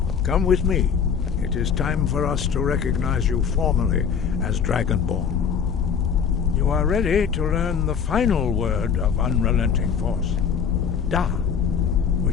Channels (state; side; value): quieter; right; 6.9 dB